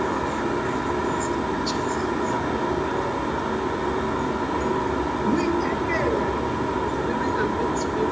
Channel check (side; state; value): left; noise; hum, 17 dB below the sound